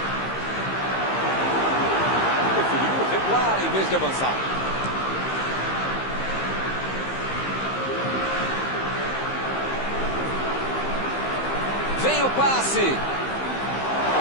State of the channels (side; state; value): right; late; 15 ms